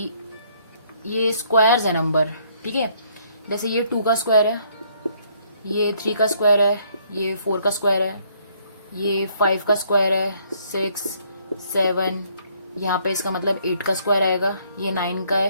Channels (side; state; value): both; inverted; correlation -0.66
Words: ये स्क्वायर्स है नंबर, ठीक है। जैसे ये 2 का स्क्वायर है, ये 3 का स्क्वायर है, ये 4 का स्क्वायर है, ये 5 का स्क्वायर है, 6 7 यहाँ पे इसका मतलब 8 का स्क्वायर आएगा, ये 9 का